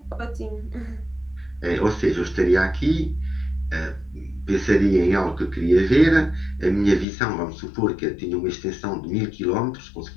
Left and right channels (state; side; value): drops out; right; at 7.1 s